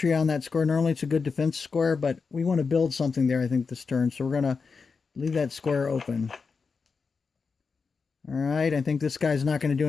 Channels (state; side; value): quieter; right; 5.0 dB